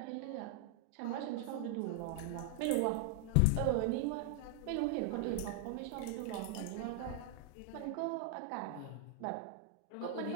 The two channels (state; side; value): different; both; correlation 0.00